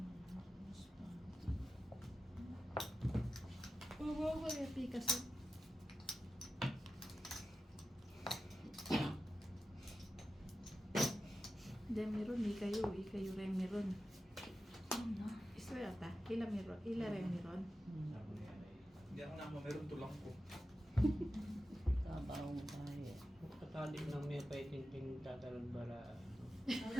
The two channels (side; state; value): both; normal; correlation 0.92